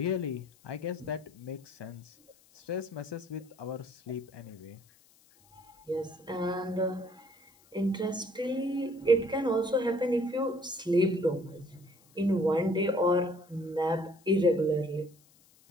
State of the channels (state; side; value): noise; left; hiss, 30 dB below the sound